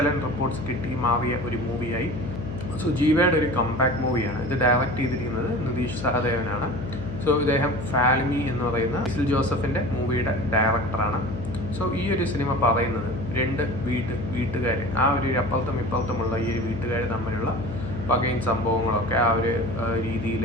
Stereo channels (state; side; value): noise; left; hum, 8 dB below the sound